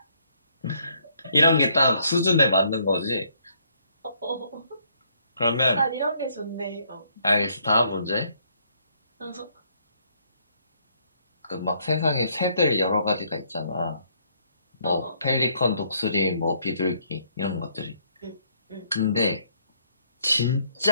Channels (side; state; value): both; inverted; correlation -0.69